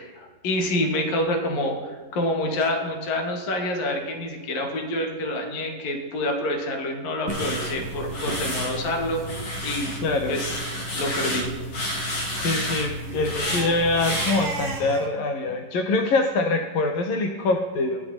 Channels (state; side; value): late; right; 11 ms